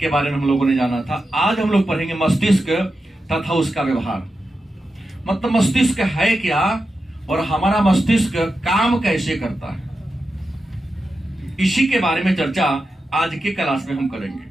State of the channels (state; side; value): normal; both; correlation 0.90